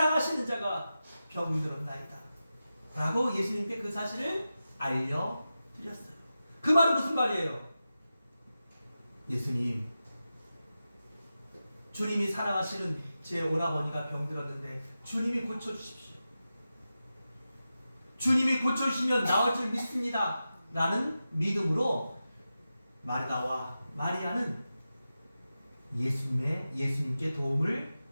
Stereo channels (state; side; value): inverted; both; correlation -0.92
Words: 자가 병들었나이다 라고 예수님께 그 사실을 알려드렸어요. 그 말은 무슨 말이에요? 예수님, 주님이 사랑하시는 제 오라버니가 병들었는데 주님이 고쳐주십시오. 주님이 고쳐주시면 나을 줄 믿습니다 라는 믿음으로 마르다와 마리아는 예수님께 도움을